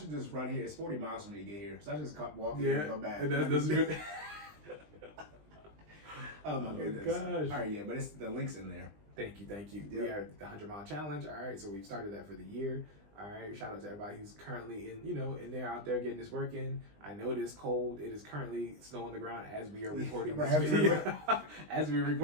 just run here. It's 40 miles for me to get here. So I just walk here and go back. That's good. Oh my goodness. Gosh. All right, but it's the link's in there. Thank you. Yep. We are the 100 mile challenge. All right, so we've started that for the year. All right, shout out to everybody who's currently in there out there getting this work in. I know it is cold. It is currently snow on the ground as we are recording this video, as we're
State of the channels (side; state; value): left; late; 20 ms